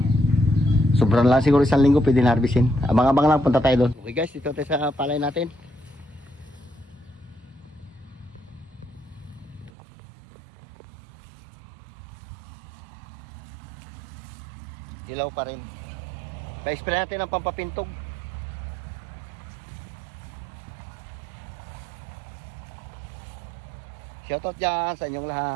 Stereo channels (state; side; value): drops out; left; at 9.7 s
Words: Sobrang lang siguro, isang linggo pwede na harbisin. Abang-abang lang, punta tayo doon. Okay guys, dito tayo sa palay natin. Ilaw pa rin. Pa-spray natin ang pampapintog. Shoutout dyan sa inyong